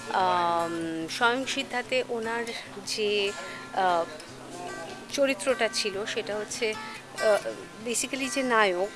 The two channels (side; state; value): both; identical; correlation 1.00